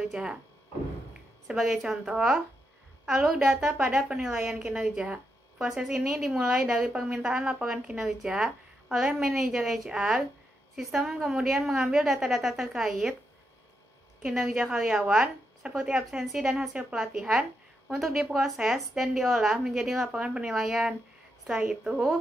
Sebagai contoh, alur data pada penilaian kinerja. Proses ini dimulai dari permintaan laporan kinerja oleh manajer HR. Sistem kemudian mengambil data-data terkait kinerja karyawan, seperti absensi dan hasil pelatihan, untuk diproses dan diolah menjadi laporan penilaian. Setelah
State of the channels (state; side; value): normal; both; correlation 0.83